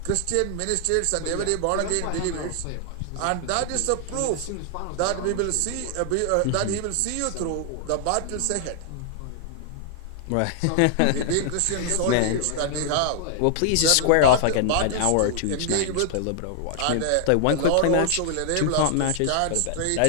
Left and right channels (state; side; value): different; both; correlation 0.00